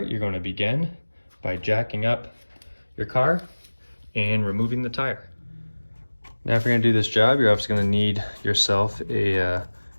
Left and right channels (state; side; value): inverted; both; correlation -1.00